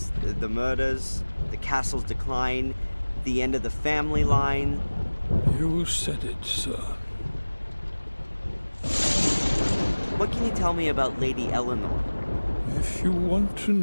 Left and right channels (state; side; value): inverted; both; correlation -1.00